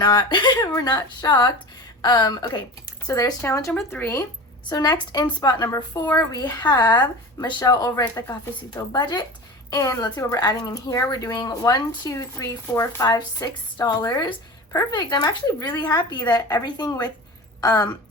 we're not shocked. Okay, so there's challenge number 3. So next, in spot number 4, we have Michelle over at the Cafecito Budget. And let's see what we're adding in here. We're doing $1, 2, 3, 4, 5, $6. Perfect. I'm actually really happy that everything with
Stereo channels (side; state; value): both; normal; correlation 0.32